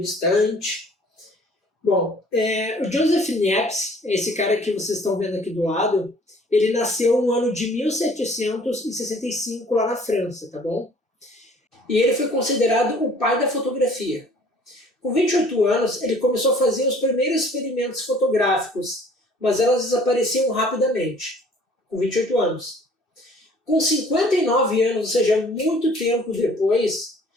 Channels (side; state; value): both; normal; correlation 0.54